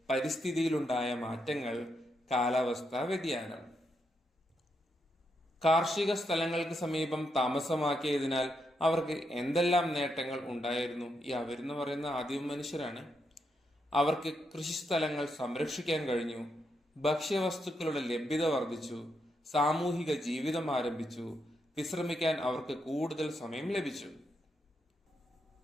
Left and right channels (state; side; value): normal; both; correlation 0.81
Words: പരിസ്ഥിതിയിലുണ്ടായ മാറ്റങ്ങൾ, കാലാവസ്ഥാ വ്യതിയാനം. കാർഷിക സ്ഥലങ്ങൾക്ക് സമീപം താമസമാക്കിയതിനാൽ അവർക്ക് എന്തെല്ലാം നേട്ടങ്ങൾ ഉണ്ടായിരുന്നു? ഈ അവരെന്ന് പറയുന്ന ആദിമ മനുഷ്യരാണ്. അവർക്ക് കൃഷിസ്ഥലങ്ങൾ സംരക്ഷിക്കാൻ കഴിഞ്ഞു, ഭക്ഷ്യവസ്തുക്കളുടെ ലഭ്യത വർദ്ധിച്ചു, സാമൂഹിക ജീവിതം ആരംഭിച്ചു, വിശ്രമിക്കാൻ അവർക്ക് കൂടുതൽ സമയം ലഭിച്ചു.